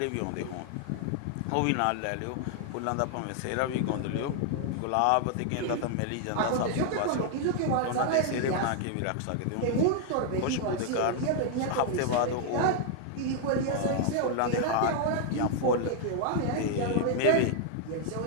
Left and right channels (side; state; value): both; different; correlation 0.00